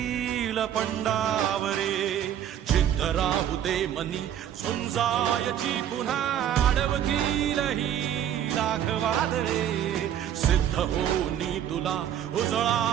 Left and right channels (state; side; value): quieter; left; 10.3 dB